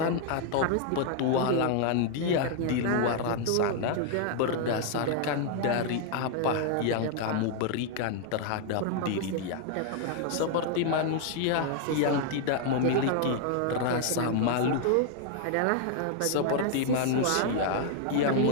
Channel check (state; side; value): different; both; correlation 0.00